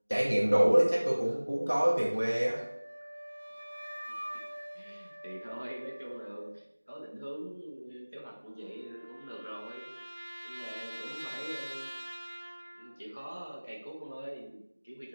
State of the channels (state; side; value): inverted; both; correlation -1.00